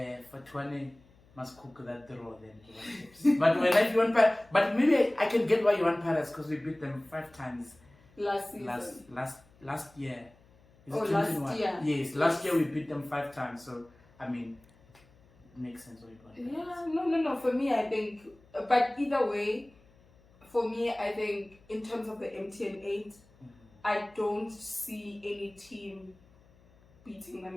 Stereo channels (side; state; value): left; noise; hum, 29 dB below the sound